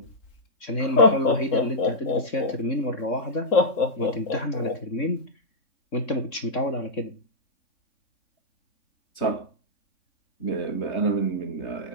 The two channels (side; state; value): right; late; 3.6 ms